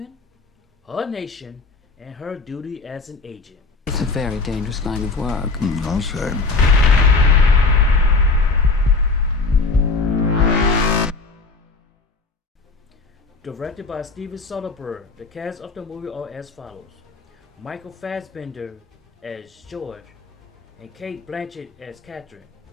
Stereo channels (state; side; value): quieter; right; 3.9 dB